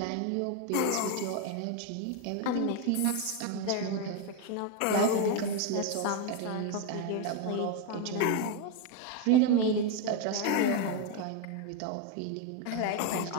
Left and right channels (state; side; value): different; both; correlation 0.02